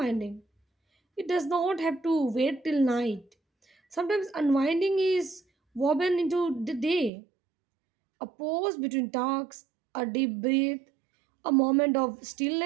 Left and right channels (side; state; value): left; drops out; at 7.1 s